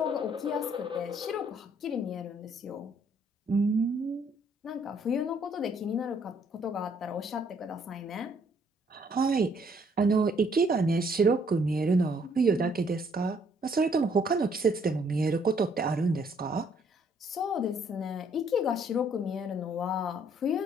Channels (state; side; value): normal; both; correlation 0.66